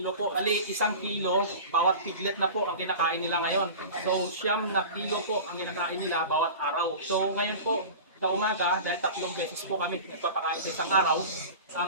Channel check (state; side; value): inverted; both; correlation -0.34